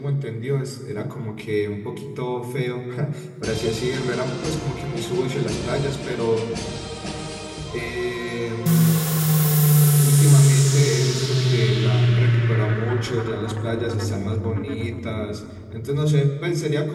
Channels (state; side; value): identical; both; correlation 1.00